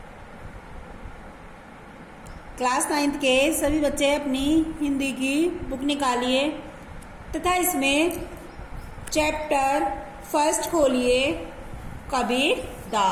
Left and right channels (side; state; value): both; identical; correlation 1.00